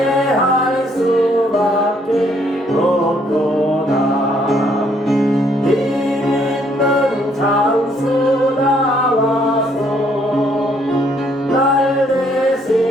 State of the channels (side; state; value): both; normal; correlation 0.67